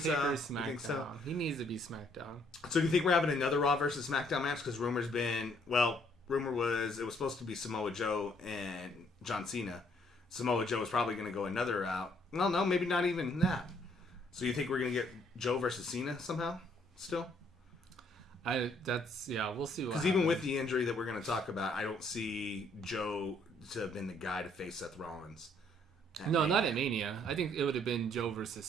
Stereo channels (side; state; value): both; normal; correlation 0.66